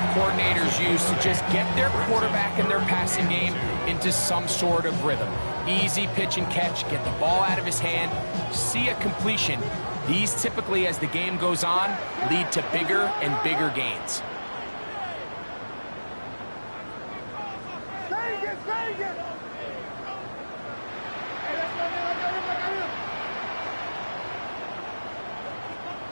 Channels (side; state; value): both; inverted; correlation -1.00